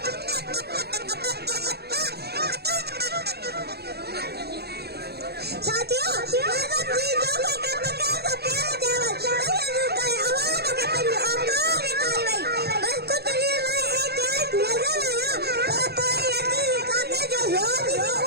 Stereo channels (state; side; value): late; left; 0.47 ms